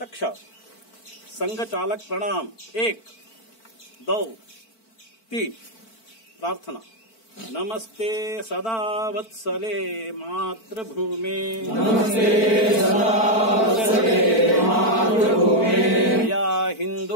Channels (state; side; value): late; right; 4.5 ms